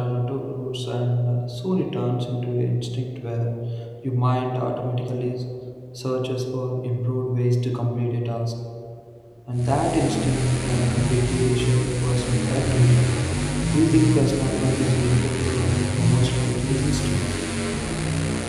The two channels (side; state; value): both; identical; correlation 1.00